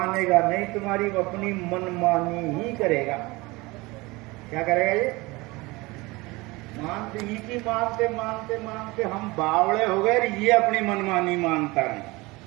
नहीं तुम्हारी, वो अपनी मनमानी ही करेगा। क्या करेगा ये? मानते ही की मानते मानते मानते हम बावड़े हो गए, ये अपनी मनमानी मानता नहीं।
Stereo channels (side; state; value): left; quieter; 22.9 dB